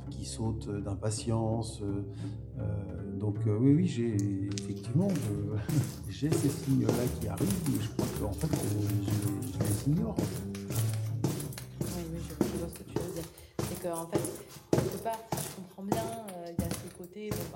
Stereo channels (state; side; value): identical; both; correlation 1.00